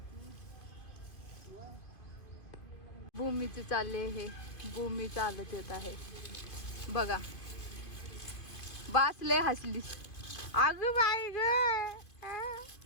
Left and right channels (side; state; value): right; late; 2.5 ms